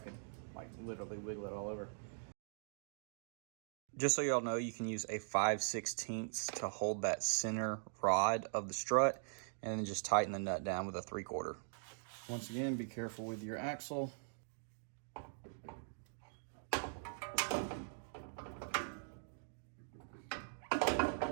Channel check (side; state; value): left; silent; digital silence